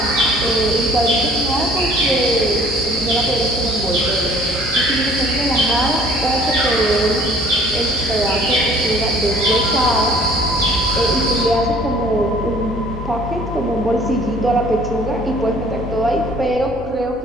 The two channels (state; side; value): normal; both; correlation 0.55